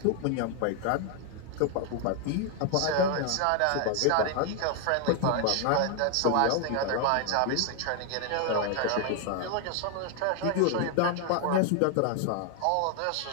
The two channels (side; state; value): both; different; correlation 0.00